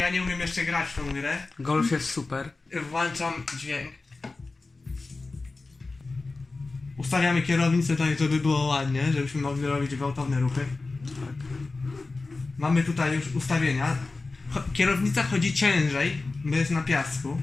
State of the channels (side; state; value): right; quieter; 3.6 dB